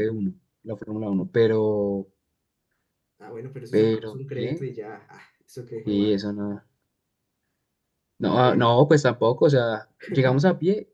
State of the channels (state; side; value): identical; both; correlation 1.00